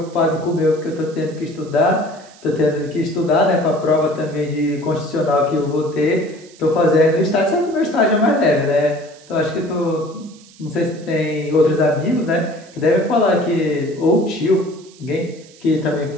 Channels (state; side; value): noise; right; hiss, 24 dB below the sound